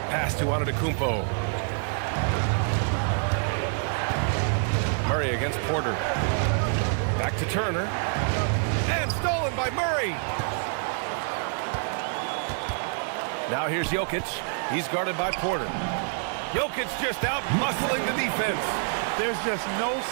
Pass to Antetokounmpo. Murray against Porter. Back to Turner. And stolen by Murray. Now here's Jokic. He's guarded by Porter. Jokic just out muscling the defense. There's just no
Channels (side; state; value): left; silent; 60 dB below the other